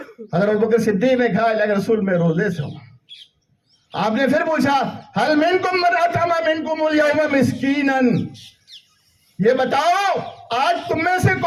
حضرت ابو بکر صدیق نے کہا اللہ کے رسول میں روزے سے ہوں۔ آپ نے پھر پوچھا هل منکم من اطعم منکم اليوم مسکینا، یہ بتاؤ آج تم میں سے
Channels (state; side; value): identical; both; correlation 1.00